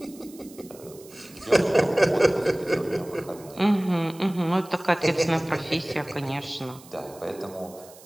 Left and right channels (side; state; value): right; noise; hiss, 22 dB below the sound